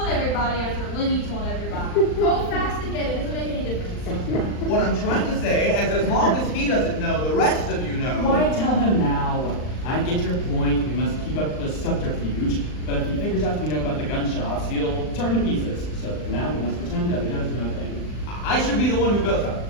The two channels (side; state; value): right; late; 39 ms